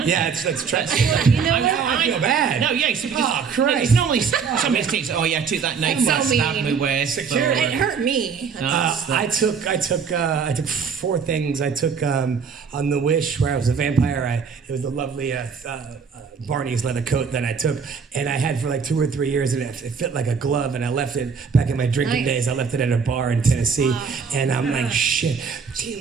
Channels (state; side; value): quieter; left; 6.0 dB